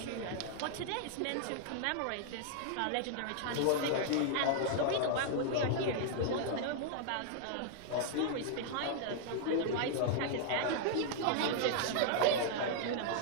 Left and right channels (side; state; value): both; different; correlation -0.01